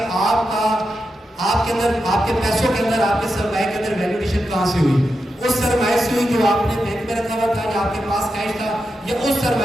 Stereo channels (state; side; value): normal; both; correlation 0.88